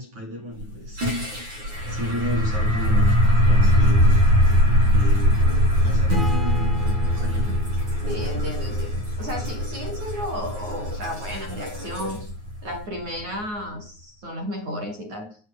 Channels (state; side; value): late; left; 9.5 ms